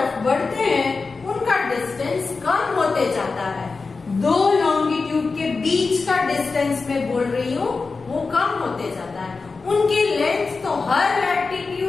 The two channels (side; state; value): right; quieter; 4.2 dB